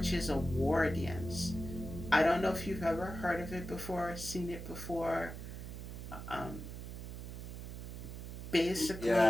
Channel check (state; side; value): noise; right; hum, 9 dB below the sound